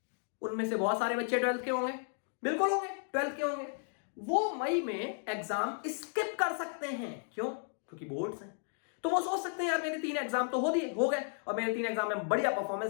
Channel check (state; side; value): silent; right; 55 dB below the other